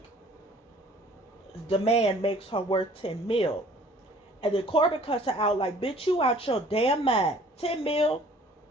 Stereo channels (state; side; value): normal; both; correlation 0.54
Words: demand makes her worth 10 mil. And then Corbin cuts her out like, bitch, you out your damn mind. 10 mil.